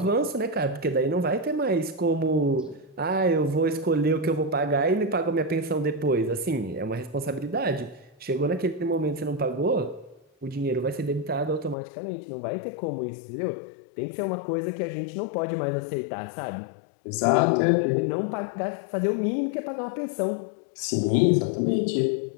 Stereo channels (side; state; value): right; drops out; at 11.8 s